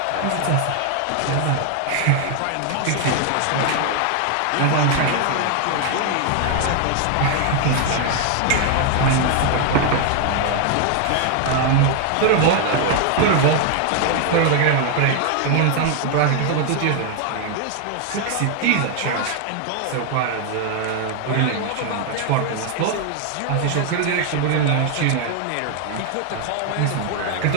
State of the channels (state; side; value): different; both; correlation 0.00